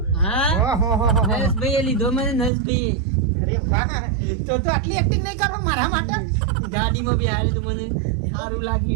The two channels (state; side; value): drops out; left; at 2.5 s